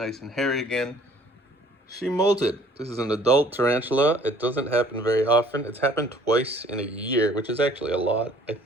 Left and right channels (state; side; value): normal; both; correlation 0.55